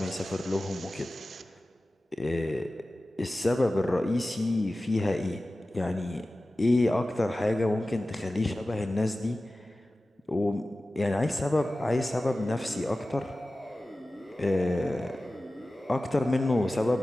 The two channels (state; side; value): normal; both; correlation 0.96